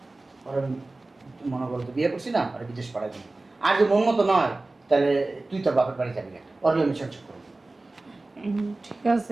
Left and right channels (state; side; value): quieter; left; 3.1 dB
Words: ওর মনে করো তো বিয়ে করছি না আর বিদেশ পাঠাই দিই আর যদি মন মতো নয় তাহলে তুই তোর বাপের বাড়ি যাবি না ওর আমি সংসার করবো ঠিক